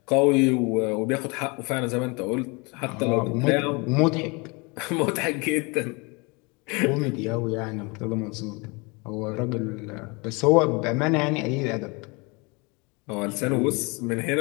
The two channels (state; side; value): quieter; right; 28.7 dB